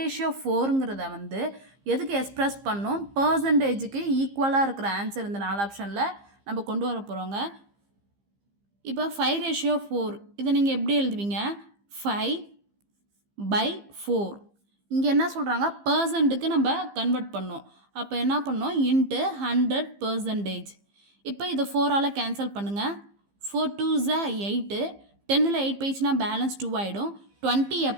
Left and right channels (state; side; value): late; left; 15 ms